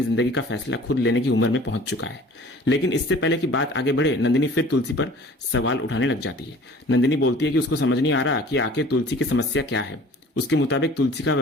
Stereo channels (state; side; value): normal; both; correlation 0.47